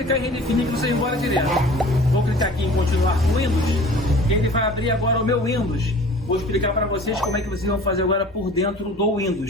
em redefinir que você vai embora direto. Vou clicar aqui em continuar com o Windows, que ele vai abrir agora o meu Windows. Vou explicar para vocês como é que vocês vão fazer agora por dentro do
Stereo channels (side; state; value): both; normal; correlation 0.45